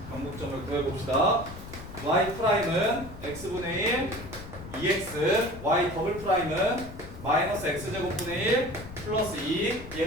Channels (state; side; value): noise; left; rumble, 13 dB below the sound